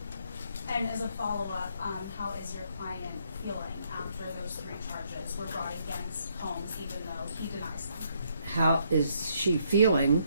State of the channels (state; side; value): inverted; both; correlation -0.71